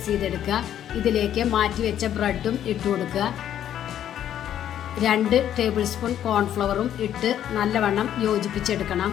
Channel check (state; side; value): quieter; right; 10.7 dB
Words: ചെയ്തെടുക്കുക. ഇതിലേക്ക് മാറ്റി വെച്ച ബ്രെഡും ഇട്ട് കൊടുക്കുക. 2 ടേബിൾ സ്പൂൺ കോൺഫ്ലവറും ഇട്ട് നല്ലവണ്ണം യോജിപ്പിച്ചെടുക്കണം.